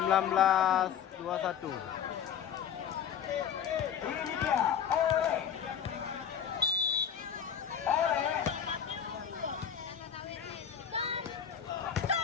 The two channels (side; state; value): right; quieter; 8.3 dB